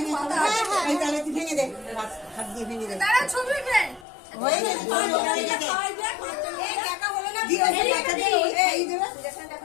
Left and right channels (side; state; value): right; drops out; at 4.0 s